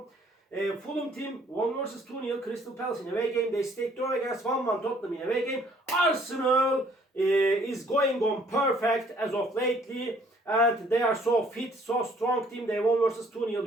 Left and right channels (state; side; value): normal; both; correlation 0.60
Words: Fulham team won versus 2-0 Crystal Palace in away game. They stayed draw against 1-1 Tottenham in away game. Arsenal is going on perfect as of lately, and they are so fit, so strong team. They won versus 2-0